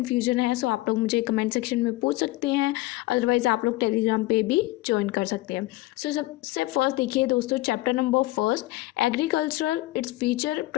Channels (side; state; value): right; quieter; 18.8 dB